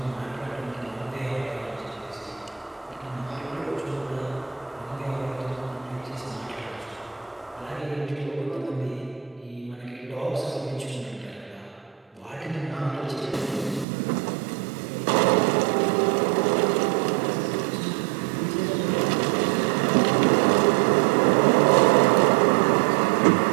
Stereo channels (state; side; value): drops out; left; at 13.9 s